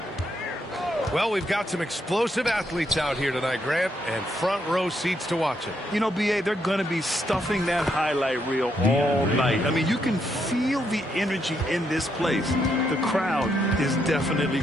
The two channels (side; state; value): both; normal; correlation 0.77